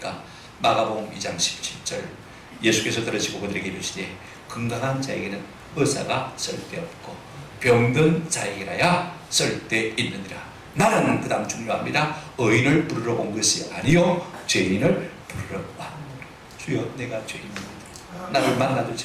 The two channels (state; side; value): identical; both; correlation 1.00